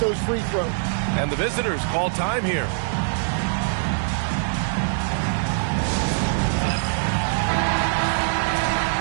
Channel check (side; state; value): left; silent; digital silence